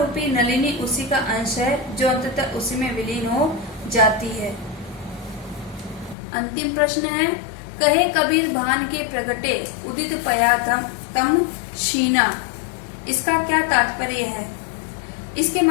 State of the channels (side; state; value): right; drops out; at 6.2 s